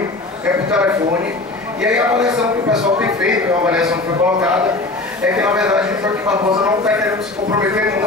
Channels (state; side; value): quieter; right; 3.1 dB